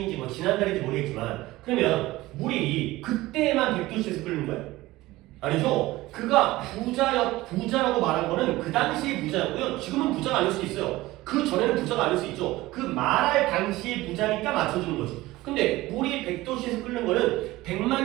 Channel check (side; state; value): left; quieter; 18.3 dB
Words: 뭐 지난달인지 모르겠지만 그러면 물이 그때만 100도씨에서 끓는 거예요? 아니죠. 그가 부자라고 말한 거는 그 당시의 부자였고요. 지금은 부자가 아닐 수 있어요. 그 전에는 부자가 아닐 수 있죠. 그 말할 당시의 부자니까 맞춰주는 거지. 근데 물이 100도씨에서 끓는 거는